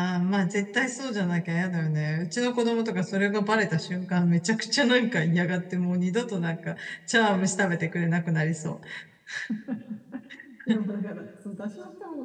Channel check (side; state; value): both; identical; correlation 1.00